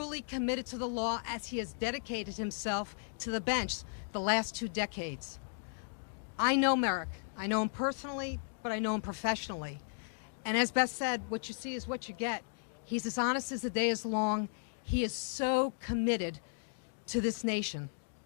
committed to the law, as he has dedicated himself to the bench the last 2 decades. I know Merrick. I know him personally, but I know him professionally. And as Beth said, what you see is what you get. He's as honest as the day is long. He is so committed to this nation.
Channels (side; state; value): right; silent; digital silence